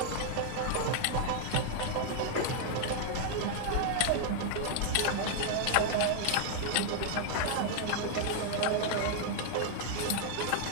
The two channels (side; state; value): both; different; correlation 0.00